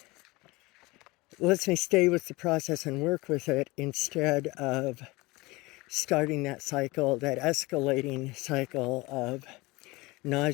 with the process and work with it, instead of starting that cycle, that escalating cycle of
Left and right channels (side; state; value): right; quieter; 22.5 dB